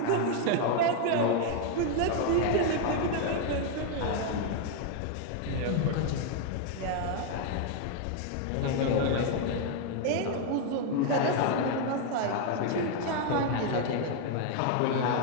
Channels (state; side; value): different; both; correlation 0.00